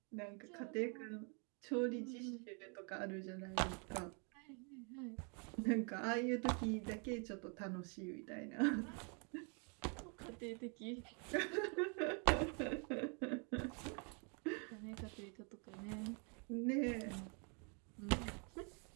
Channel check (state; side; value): quieter; left; 37.3 dB